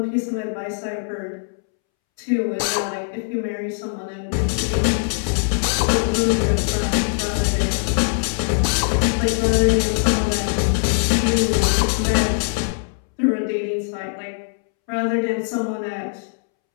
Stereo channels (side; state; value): right; silent; 65 dB below the other